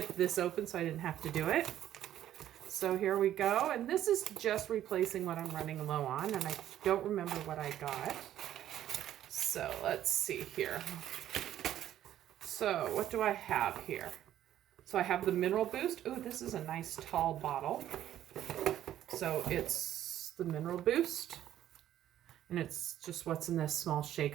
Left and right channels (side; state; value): left; quieter; 11.9 dB